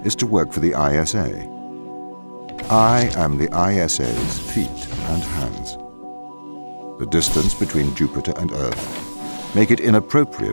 is to work for the ISA. I am the ISA's feet and hands. The distance between Jupiter and Earth make it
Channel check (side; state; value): both; inverted; correlation -1.00